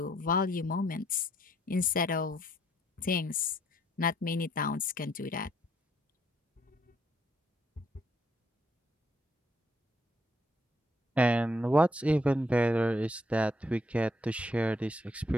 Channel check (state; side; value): normal; both; correlation 0.70